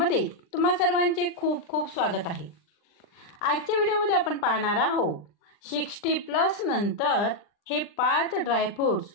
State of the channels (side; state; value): right; late; 39 ms